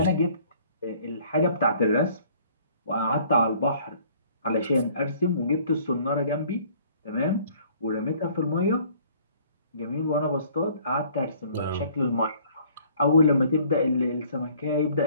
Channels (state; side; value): inverted; both; correlation -0.57